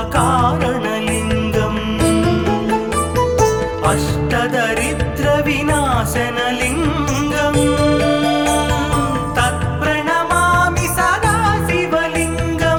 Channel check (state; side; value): identical; both; correlation 1.00